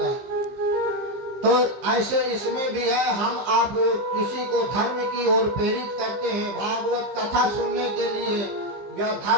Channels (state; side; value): late; left; 15 ms